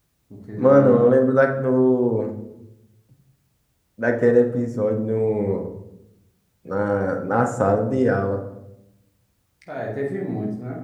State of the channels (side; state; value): both; identical; correlation 1.00